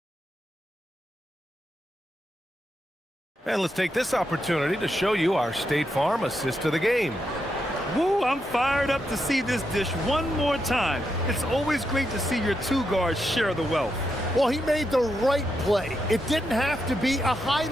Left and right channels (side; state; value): both; normal; correlation 0.83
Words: And let's take this opportunity to show you our State Farm assist of the game. Woo, I'm fired up to see this dish one more time. It's always great to see your 2 guards share the wealth. Well, he made the right play. It didn't have to be a